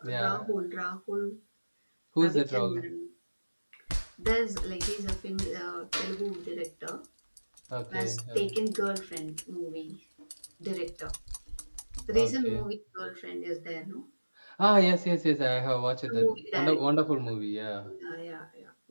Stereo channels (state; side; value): inverted; both; correlation -1.00